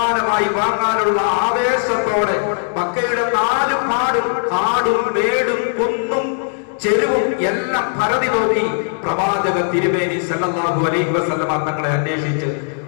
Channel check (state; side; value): silent; right; 67 dB below the other